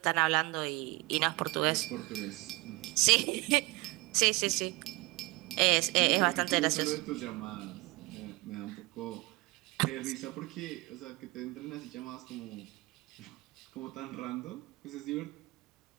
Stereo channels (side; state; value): left; quieter; 23.2 dB